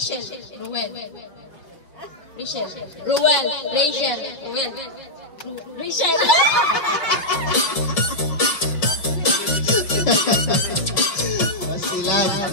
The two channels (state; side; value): late; right; 5.0 ms